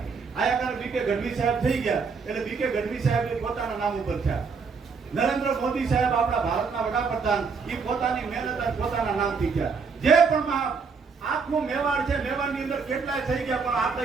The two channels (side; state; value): left; quieter; 5.2 dB